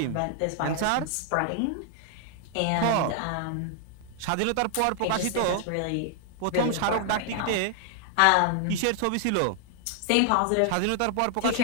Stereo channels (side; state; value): both; different; correlation 0.00